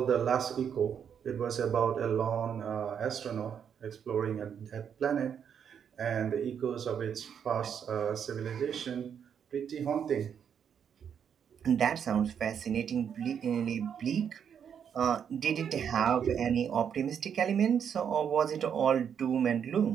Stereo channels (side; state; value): left; quieter; 7.9 dB